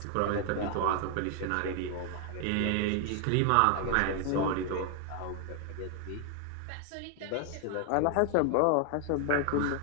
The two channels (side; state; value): both; different; correlation 0.00